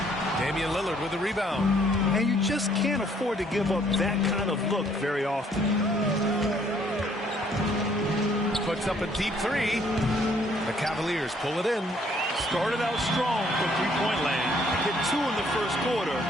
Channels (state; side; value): normal; both; correlation 0.64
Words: Damian Lillard with the rebound. And you just can't afford to give up that kind of look very often. Puts up a deep 3. The Cavaliers pull it in. Started out strong from three-point land. Hit 2 in the first quarter,